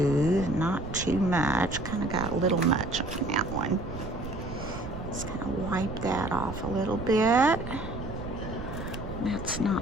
not too much. Kind of got a little much on that one. Just kind of wipe that off a little bit. That's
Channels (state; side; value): noise; right; rumble, 8 dB below the sound